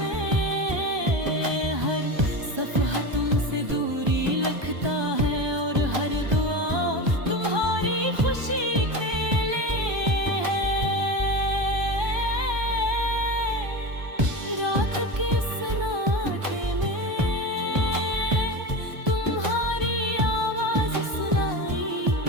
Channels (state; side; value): late; left; 1.2 ms